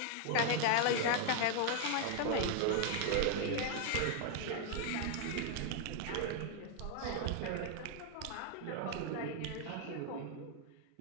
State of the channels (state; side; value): different; both; correlation 0.00